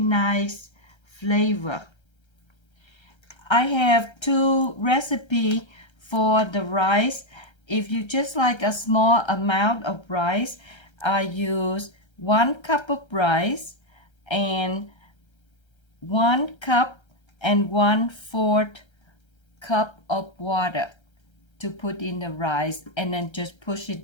flavor. I have two recipes for the rice. If you just like a small amount of rice, I use 1 cup of rice and 1 cup and 1/4 cup of water to put in the rice, and then just push it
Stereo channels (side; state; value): right; late; 1.3 ms